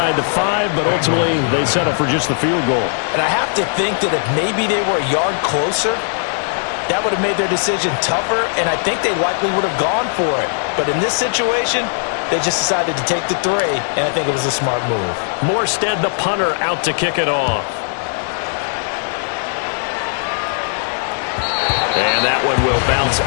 the 5, but ultimately they settle for just the field goal. And I have to think that if maybe they were a yard closer, that would have made their decision tougher, and I think they likely would have gone for it. But in this situation, they just decided to take the 3, and I think it was a smart move. Morstead, the punter, out to kick it off. And that one will bounce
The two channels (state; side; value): silent; right; digital silence